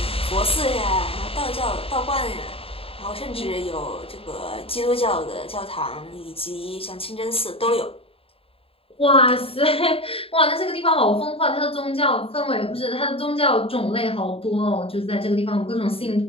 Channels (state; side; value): late; right; 0.27 ms